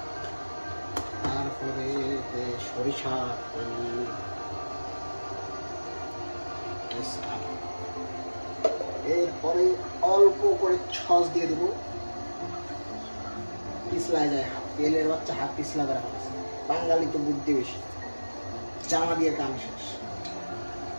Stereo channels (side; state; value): both; inverted; correlation -1.00